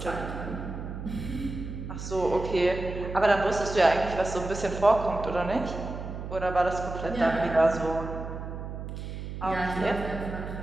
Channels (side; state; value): right; noise; hum, 8 dB below the sound